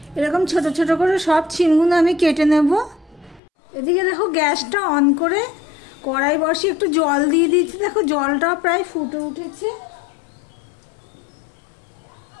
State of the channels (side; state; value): right; drops out; at 3.4 s